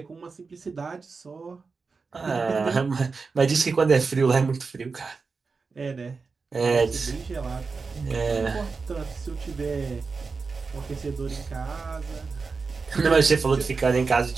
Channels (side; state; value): left; quieter; 4.6 dB